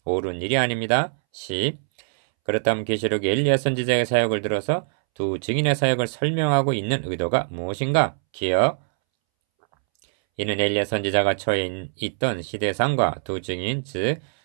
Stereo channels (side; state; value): left; silent; 63 dB below the other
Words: 옳은 일이 아닙니다. 10. 그렇다면 계시록의 엘리야 선지자의 사역을 들어서 두 증인의 사역을 설명하고 있는 의도가 무엇인가? 기억. 이는 엘리야 선지자가 처해 있던 시대상과 두 증인, 즉